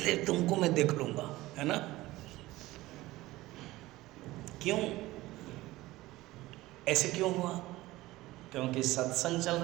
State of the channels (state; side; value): quieter; left; 18.1 dB